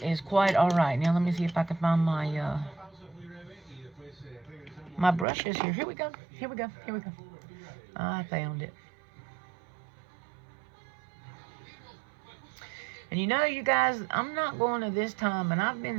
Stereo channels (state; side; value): drops out; left; at 5.2 s